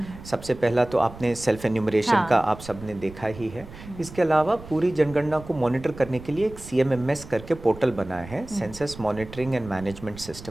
सबसे पहला तो आपने सेल्फ एन्यूमरेशन का आप सबने देखा ही है। इसके अलावा पूरी जनगणना को मॉनिटर करने के लिए एक CMMS करके पोर्टल बनाया है, census monitoring and management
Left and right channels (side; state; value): right; noise; rumble, 16 dB below the sound